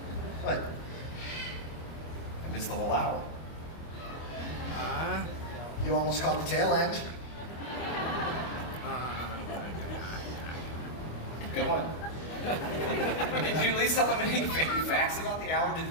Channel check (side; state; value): right; late; 25 ms